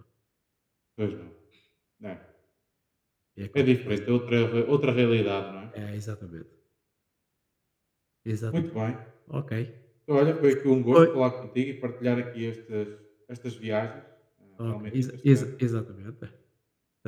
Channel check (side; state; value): both; identical; correlation 1.00